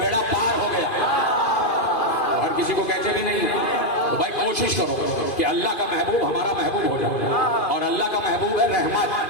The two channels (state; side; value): late; right; 2.4 ms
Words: پار ہو گیا. ہر کسی کو کہتے بھی نہیں. تو بھائی کوشش کرو کہ اللہ کا محبوب ہمارا محبوب ہو جائے, اور اللہ کا محبوب ہے رحمت.